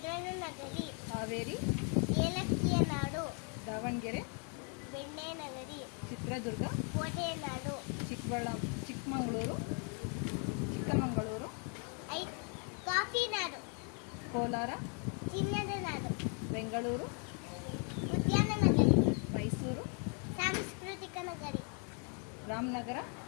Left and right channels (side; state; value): right; quieter; 39.7 dB